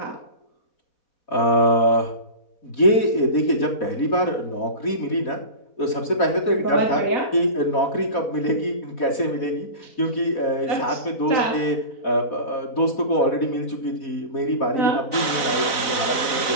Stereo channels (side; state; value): right; late; 4.0 ms